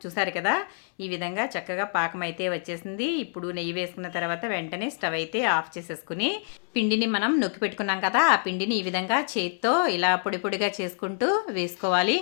చూసారు కదా, ఈ విధంగా చక్కగా పాకం అయితే వచ్చేసింది. ఇప్పుడు నెయ్యి వేసుకున్న తర్వాత వెంటనే స్టవ్ అయితే ఆఫ్ చేసేసుకుని పిండిని మనం నొక్కి పెట్టుకున్నాం కదా, ఆ పిండిని ఈ విధంగా చేత్తో ఇలా పొడి పొడిగా చేసుకుంటూ వేసుకోవాలి.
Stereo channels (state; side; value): silent; right; 60 dB below the other